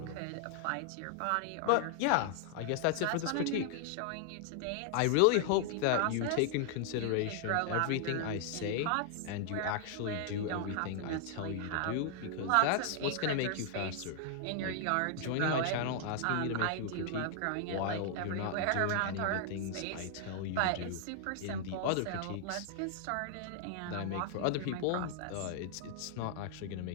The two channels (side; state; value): both; different; correlation 0.00